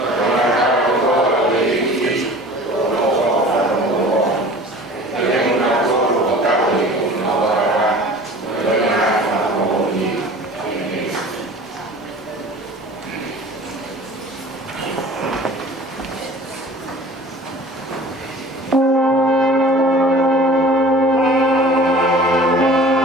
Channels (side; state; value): both; normal; correlation 0.43